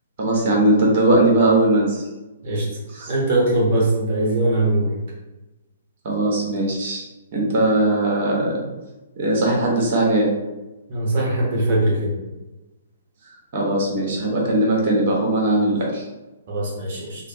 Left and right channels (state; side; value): inverted; both; correlation -0.45